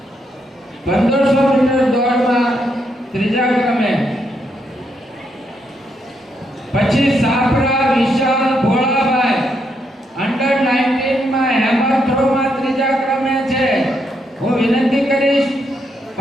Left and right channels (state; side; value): normal; both; correlation 0.78